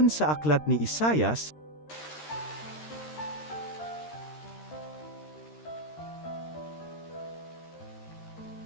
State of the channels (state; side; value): late; right; 13 ms